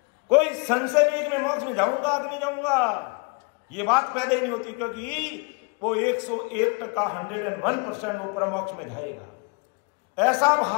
कोई संशय नहीं है कि मैं मोक्ष में जाऊंगा कि नहीं जाऊंगा, ये बात पैदा ही नहीं होती, क्योंकि वो 101% 101% वो परम मोक्ष में जाएगा। ऐसा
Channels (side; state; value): right; quieter; 32.1 dB